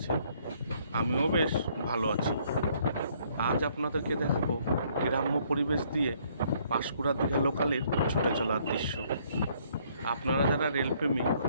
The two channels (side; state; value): both; inverted; correlation -0.65